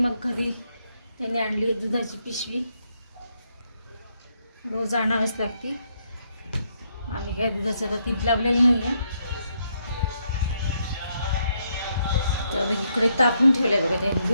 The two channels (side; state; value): both; inverted; correlation -0.76